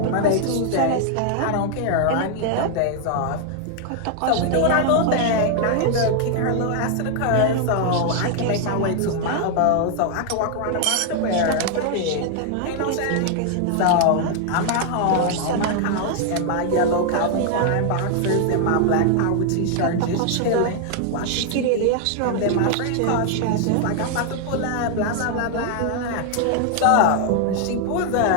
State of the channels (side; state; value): both; different; correlation 0.00